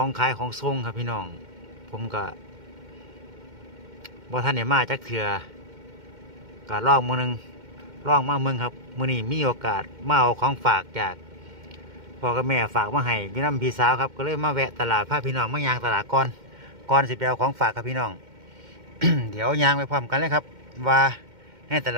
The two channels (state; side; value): late; left; 2.1 ms